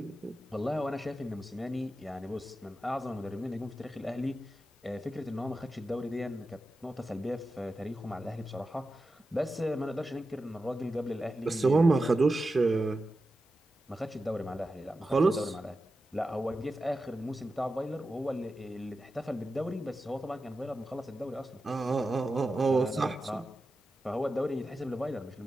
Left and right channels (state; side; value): normal; both; correlation 0.91